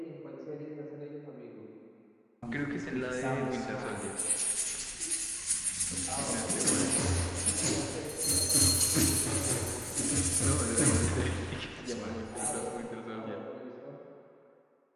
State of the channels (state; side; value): identical; both; correlation 1.00